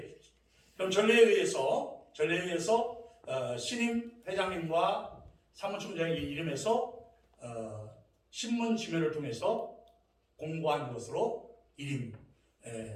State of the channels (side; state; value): both; identical; correlation 1.00